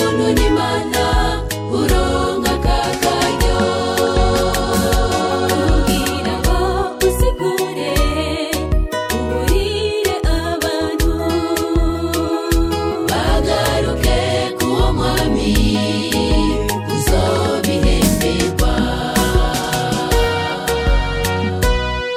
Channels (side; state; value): both; identical; correlation 1.00